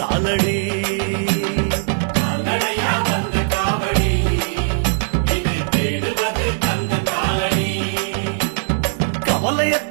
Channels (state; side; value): silent; left; 59 dB below the other